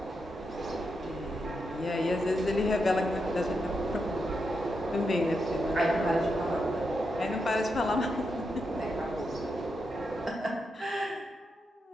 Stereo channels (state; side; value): normal; both; correlation 0.84